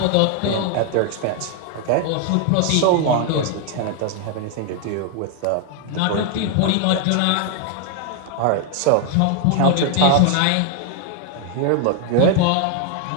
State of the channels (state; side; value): different; both; correlation 0.00